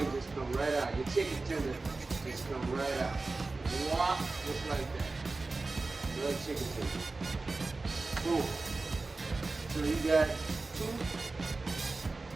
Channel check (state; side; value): quieter; left; 3.6 dB